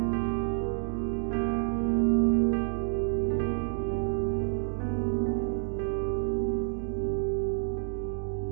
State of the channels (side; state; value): left; silent; digital silence